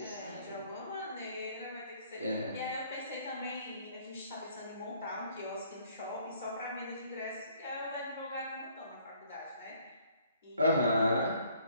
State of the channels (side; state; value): both; inverted; correlation -0.61